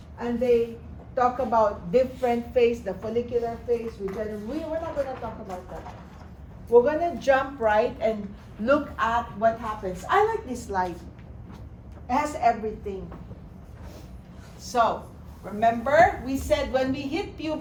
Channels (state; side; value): identical; both; correlation 1.00